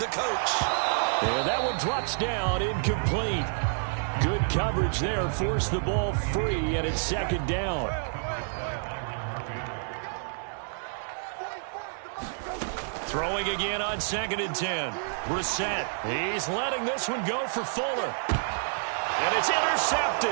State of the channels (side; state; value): left; silent; digital silence